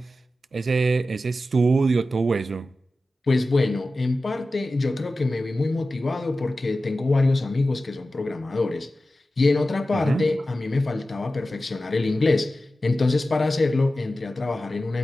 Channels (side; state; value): both; normal; correlation 0.94